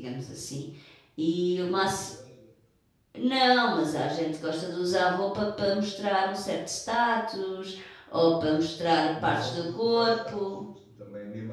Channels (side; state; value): both; identical; correlation 1.00